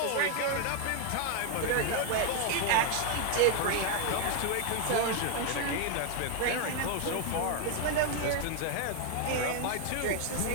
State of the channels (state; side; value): different; both; correlation 0.01